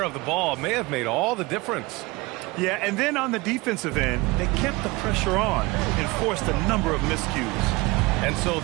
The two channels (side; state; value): left; quieter; 23.1 dB